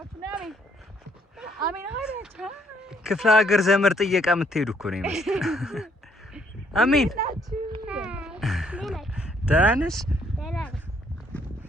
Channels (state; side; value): normal; both; correlation 0.68